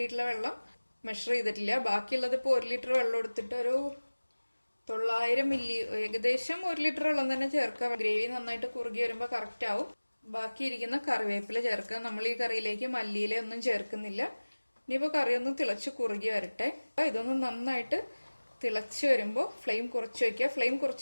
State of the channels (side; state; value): both; inverted; correlation -1.00